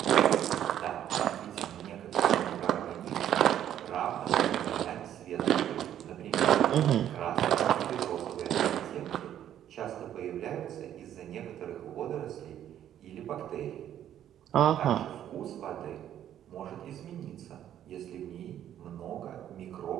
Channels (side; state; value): left; quieter; 10.8 dB